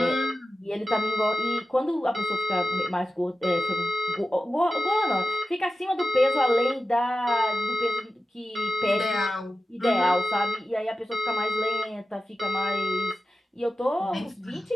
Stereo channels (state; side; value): normal; both; correlation 0.93